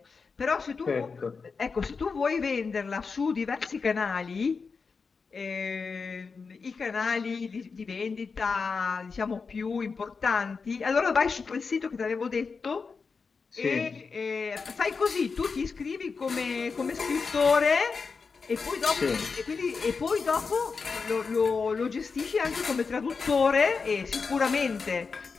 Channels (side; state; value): right; quieter; 5.0 dB